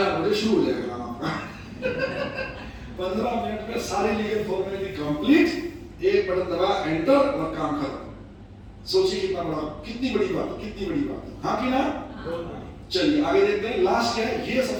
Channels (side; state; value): both; identical; correlation 1.00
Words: बजे शुरू हो जाएगा काम आपका। 15 मिनट में सारी लीगल फॉर्मेलिटी कंप्लीट, एक बटन दबा, एंटर, और काम खत्म। सोचिए कितना बड़ा, कितनी बड़ी बात है, कितनी बड़ी बात है, हाँ कि ना? चलिए आगे देखते हैं। लास्ट क्या है? ये